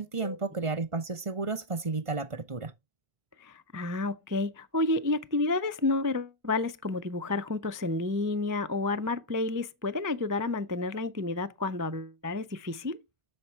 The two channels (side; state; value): left; late; 1.5 ms